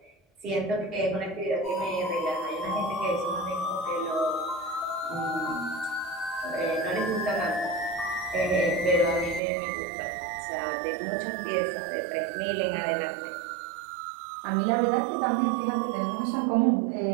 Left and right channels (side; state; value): left; drops out; at 9.4 s